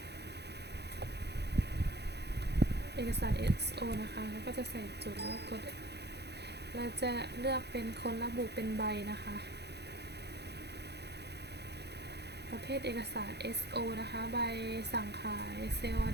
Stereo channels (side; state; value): left; late; 0.48 ms